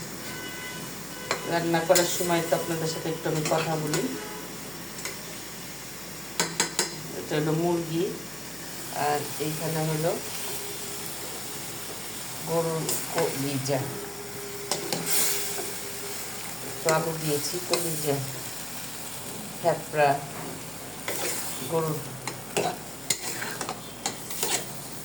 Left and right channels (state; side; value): noise; right; hum, 22 dB below the sound